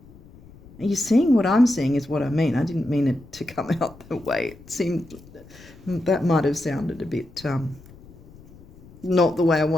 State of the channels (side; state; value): left; noise; rumble, 22 dB below the sound